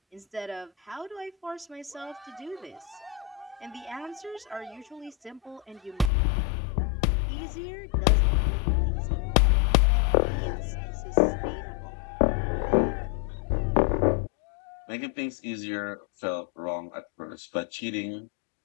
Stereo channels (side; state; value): right; drops out; at 6.1 s